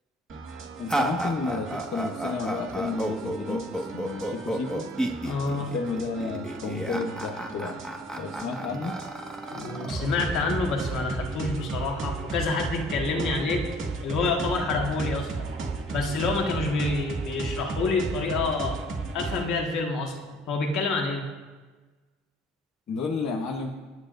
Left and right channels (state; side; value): normal; both; correlation 0.56